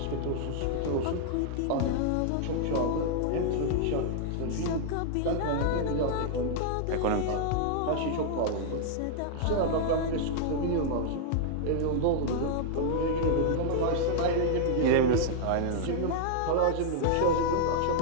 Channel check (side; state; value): both; different; correlation -0.01